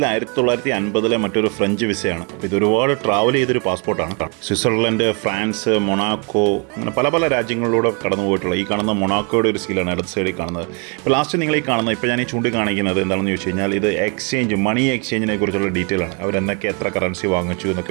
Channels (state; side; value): quieter; left; 33.8 dB